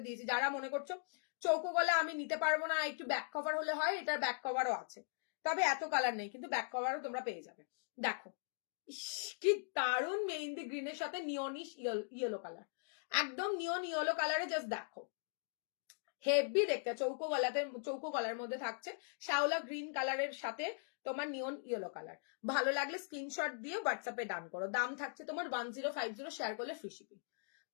দিয়েছি, যারা মনে করছো চৌকো গলা আমি নিতে পারবো না, একটু ব্যাক কভার হলে হয়, এটার ব্যাক কভারও আছে, তবে এত কালার নেই, কিন্তু ব্যাক কভারও তোমরা পেয়ে যাবে। দেখো কি দারুণ মেহেন্দি গ্রিনের সাথে নিয়নিশ ইয়েলো কালার, একদম নিয়ন ইয়েলো কালারে, জাস্ট দেখো হেভি দেখতে। চৌকো গলার মধ্যে থাকছে শ্যাওলা গ্রিন কালারের সাথে তোমার নিয়ন ইয়েলো কালার। ভালো লাগলে স্ক্রিনশট দিয়ে হোয়াটসঅ্যাপে ডান করো। দাম থাকছে তোমার 1050, শেয়ার করলে ফ্রি শিপিং।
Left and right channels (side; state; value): right; silent; digital silence